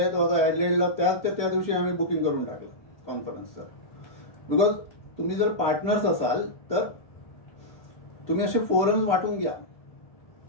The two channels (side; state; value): right; late; 1.7 ms